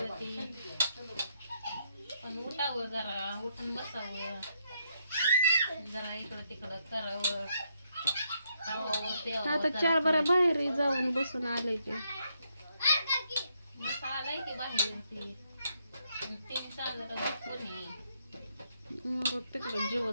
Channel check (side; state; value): both; inverted; correlation -0.76